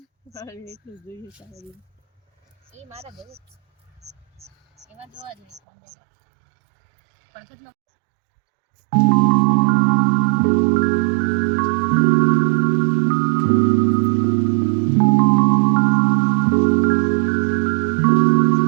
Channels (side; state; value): left; drops out; at 5.6 s